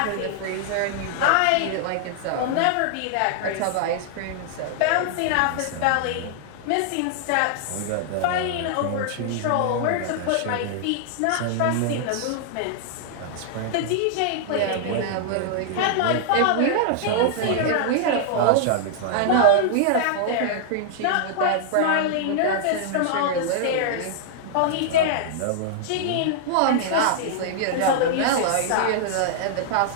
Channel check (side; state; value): both; different; correlation -0.01